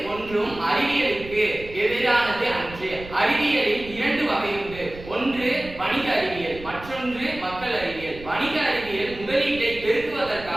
ஒன்றும் அறிவியலுக்கு எதிரானது அன்று. அறிவியலில் இரண்டு வகை உண்டு. ஒன்று வணிக அறிவியல், மற்றொன்று மக்கள் அறிவியல். வணிக அறிவியல் முதலீட்டை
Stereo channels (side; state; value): right; noise; rumble, 15 dB below the sound